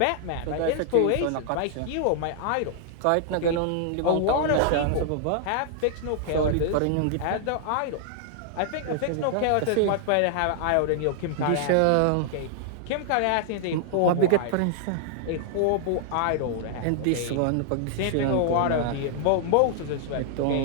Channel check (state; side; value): different; both; correlation -0.01